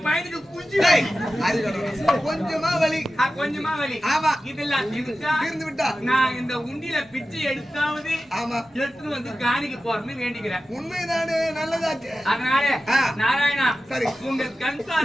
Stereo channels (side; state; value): both; normal; correlation 0.94